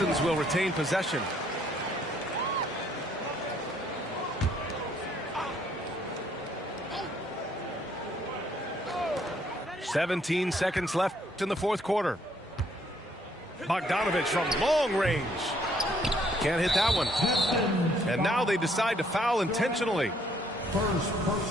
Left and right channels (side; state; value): both; normal; correlation 0.66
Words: will retain possession. "17 seconds left in the fourth quarter. Bogdanovich from long range. Can't hit that one. And now they decide to foul intentionally. First